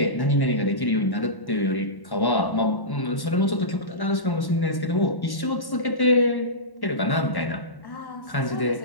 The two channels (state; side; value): late; right; 1.1 ms